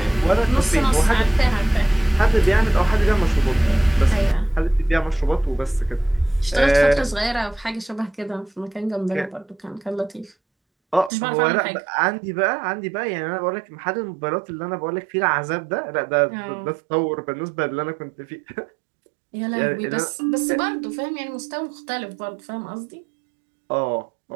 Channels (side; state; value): left; drops out; at 11.1 s